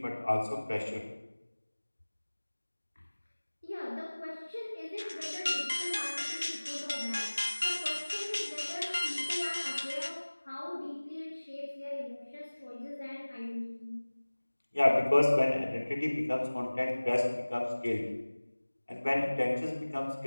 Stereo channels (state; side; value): inverted; both; correlation -1.00